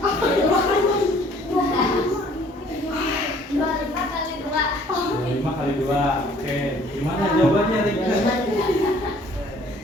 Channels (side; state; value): both; normal; correlation 0.57